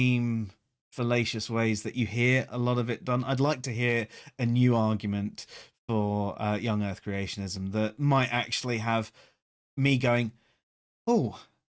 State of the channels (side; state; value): both; identical; correlation 1.00